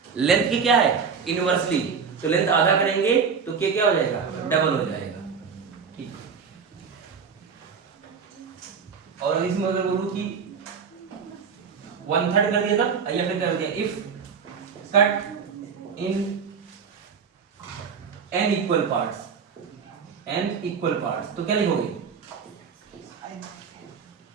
लेंथ की क्या है? इनवर्सली, तो लेंथ आधा करेंगे तो k क्या हो जाएगा? डबल हो जाएगा। ठीक, और इसमें अगर बोलूं कि 1/3 कर दिया था या फिर कर दिया, if cut in n equal parts, तो क्या लिखोगे?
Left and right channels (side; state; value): left; quieter; 6.1 dB